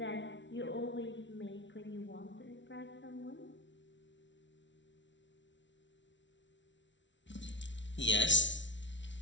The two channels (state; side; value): late; right; 0.54 ms